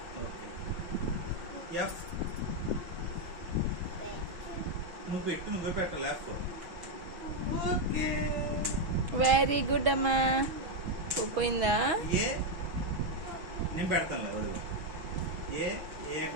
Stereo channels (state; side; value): late; left; 6.2 ms